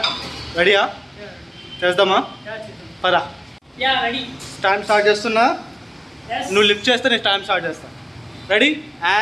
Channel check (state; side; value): identical; both; correlation 1.00